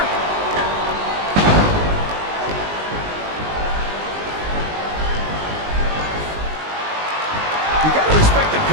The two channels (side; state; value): left; late; 19 ms